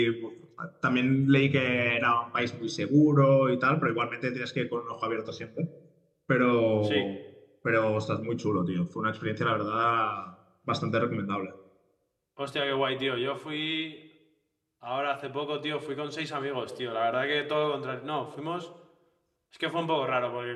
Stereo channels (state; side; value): identical; both; correlation 1.00